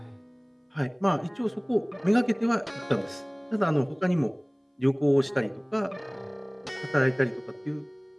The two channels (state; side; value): identical; both; correlation 1.00